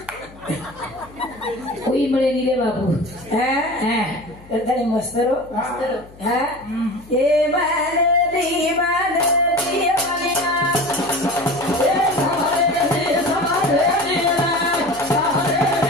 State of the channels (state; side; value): noise; left; hum, 22 dB below the sound